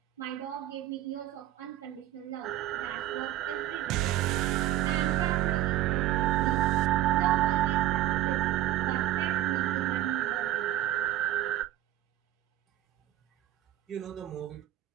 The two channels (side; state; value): left; quieter; 13.8 dB